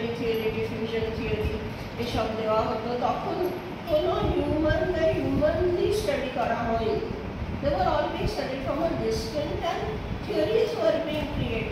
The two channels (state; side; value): identical; both; correlation 1.00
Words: theory, diffusion theory এসব দেওয়া হতো, তখন কোনো humanly study করা হয়নি। They were all being studied from a distance and theories were being